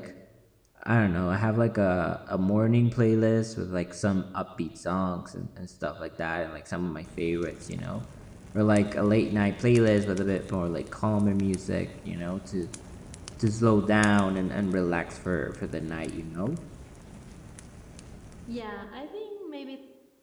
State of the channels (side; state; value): both; identical; correlation 1.00